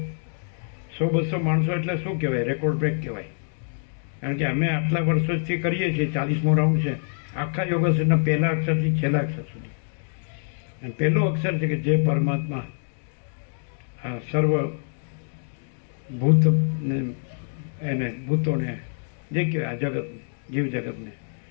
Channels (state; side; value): silent; right; digital silence